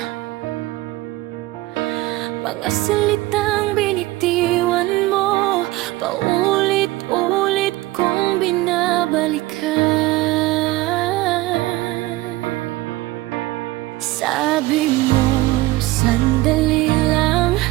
Mga salitang binitiwan mo, paulit-ulit kong binabalikan. Sabi mo, sandali lang,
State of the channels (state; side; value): quieter; left; 18.8 dB